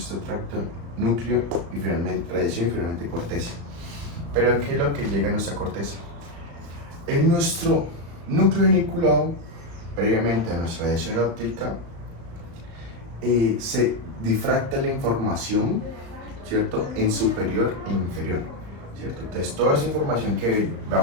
tracto núcleo y finalmente radiación y finalmente corteza. Pero ¿qué es lo que llega a nuestra corteza? En nuestro núcleo geniculado, previamente a nuestra radiación óptica, se difracta la información, ¿cierto?, en superior e inferior, ¿cierto? Entonces toda esa información que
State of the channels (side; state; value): left; late; 35 ms